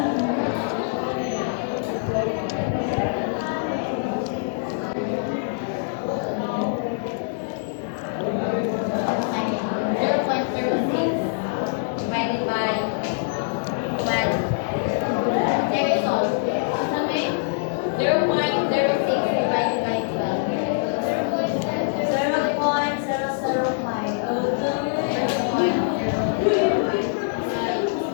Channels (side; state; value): right; silent; digital silence